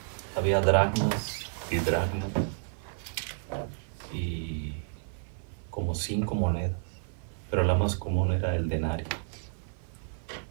Había dracmas y dracmas y como 5 monedas, pero la más común era el denario.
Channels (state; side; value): silent; left; 57 dB below the other